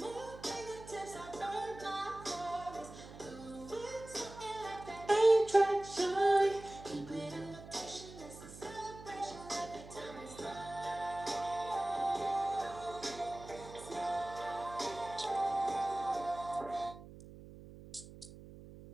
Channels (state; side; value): noise; right; hum, 16 dB below the sound